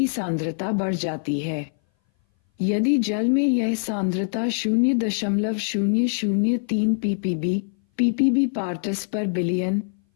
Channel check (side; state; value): right; silent; 59 dB below the other